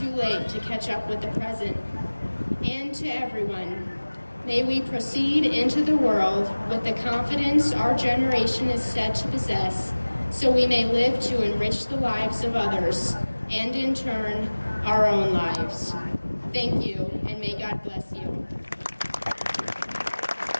late to catch up with the present. And to everyone, may we proceed into the world with the confidence our generation is set to possess, so we may live to enrich the lives of others, and in turn, our own lives. Thank you, and may God bless you.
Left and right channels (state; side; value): inverted; both; correlation -1.00